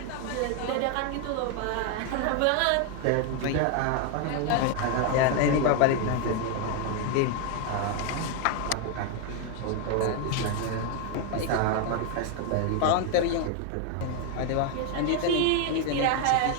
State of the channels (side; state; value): both; different; correlation 0.01